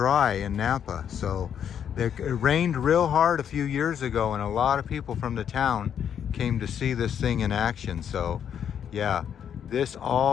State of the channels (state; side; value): quieter; right; 8.6 dB